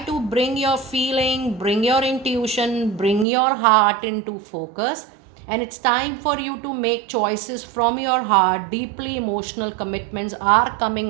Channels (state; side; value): drops out; left; at 3.2 s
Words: to bring your feeling, bring your intuition, bring your heart into focus. And it's time for you to make choices from your heart. Deeply emotional commitments are